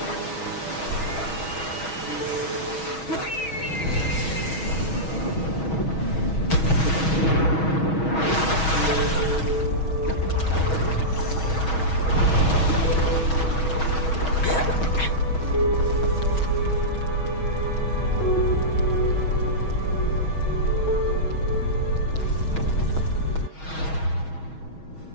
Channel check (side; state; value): right; late; 6.3 ms